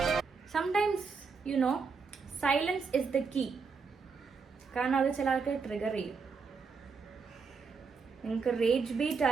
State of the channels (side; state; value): left; quieter; 5.1 dB